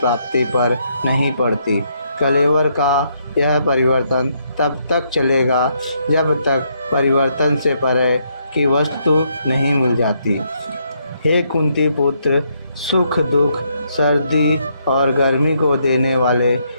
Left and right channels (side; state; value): both; inverted; correlation -0.74